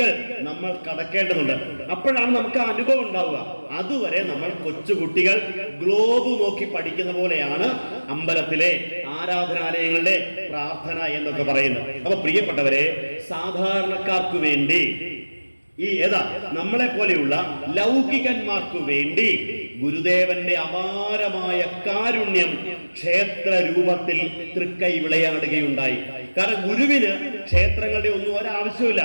നമ്മൾ കടക്കേണ്ടതുണ്ട്. അപ്പോഴാണ് നമുക്ക് ആ അനുഭവം ഉണ്ടാവുക. അതുവരെ നമ്മൾ കൊച്ചുകുട്ടികൾ ഗ്ലോബ് നോക്കി പഠിക്കുന്ന പോലെയാണ് അമ്പലത്തിലെ ആരാധനാലയങ്ങളുടെ പ്രാർത്ഥന എന്നൊക്കെ പറയുന്നത്. അപ്പൊ പ്രിയപ്പെട്ടവരെ, സാധാരണക്കാർക്ക് വേണ്ടി നമ്മളെ പോലെയുള്ള ലൗകികന്മാർക്ക് വേണ്ടി ഗുരുദേവന്റെ അപാരമായ കാരുണ്യം ക്ഷേത്ര രൂപത്തിൽ തൃക്കൈ വിളയാടുകയുണ്ടായി. കാരണം ഗുരുവിന് ക്ഷേത്രങ്ങളുടെ ഒന്നും ഒരാവശ്യമില്ല.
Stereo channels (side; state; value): both; inverted; correlation -1.00